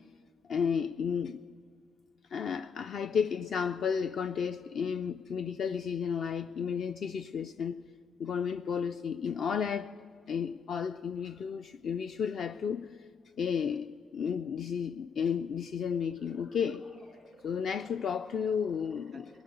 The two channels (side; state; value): right; quieter; 6.6 dB